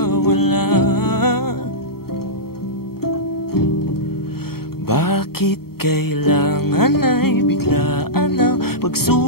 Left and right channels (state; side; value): late; right; 0.95 ms